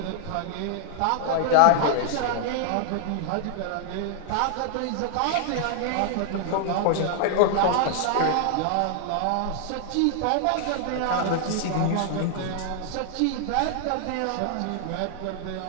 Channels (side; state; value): both; different; correlation 0.00